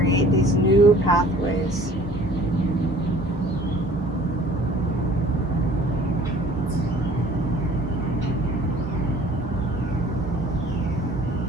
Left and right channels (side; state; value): both; normal; correlation 0.51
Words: these new pathways.